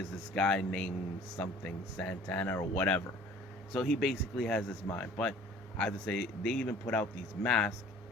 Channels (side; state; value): both; normal; correlation 0.49